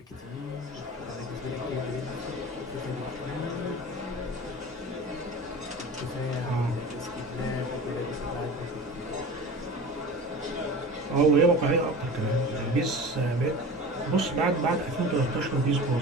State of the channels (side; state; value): both; normal; correlation 0.35